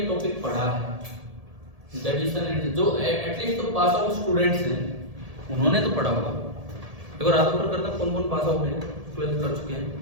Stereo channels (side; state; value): left; late; 1.7 ms